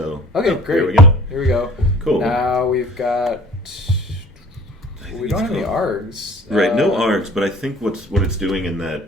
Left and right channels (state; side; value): normal; both; correlation 0.49